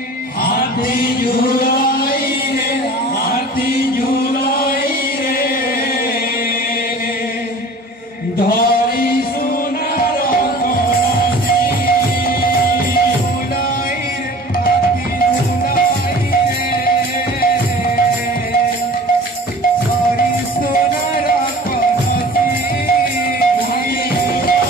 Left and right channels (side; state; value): both; normal; correlation 0.43